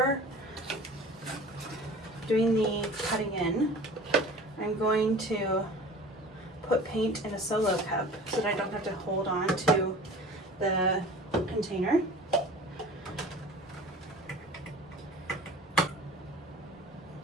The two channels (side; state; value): both; normal; correlation 0.41